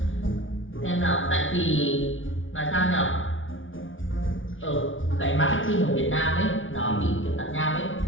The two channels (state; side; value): late; right; 0.57 ms